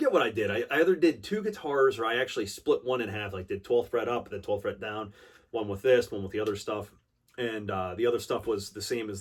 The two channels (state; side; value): identical; both; correlation 1.00